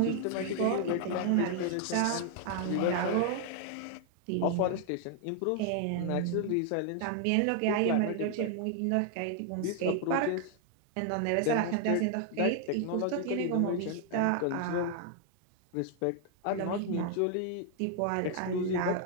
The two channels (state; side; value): different; both; correlation 0.00